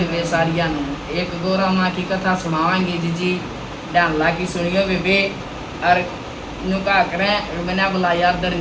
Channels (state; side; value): identical; both; correlation 1.00